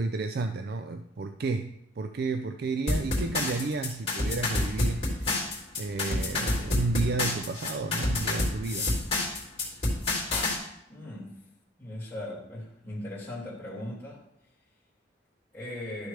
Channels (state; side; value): normal; both; correlation 0.53